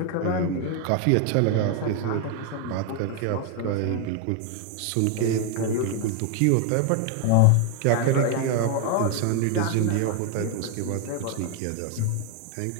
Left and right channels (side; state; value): both; different; correlation 0.01